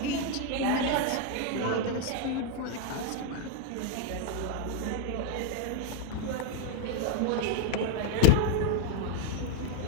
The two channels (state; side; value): different; both; correlation 0.01